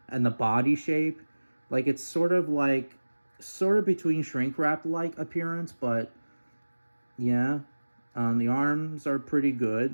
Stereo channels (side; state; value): both; inverted; correlation -1.00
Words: the body shape, like it's sort of between shrink wrap like appearance, but yeah. The arms are pretty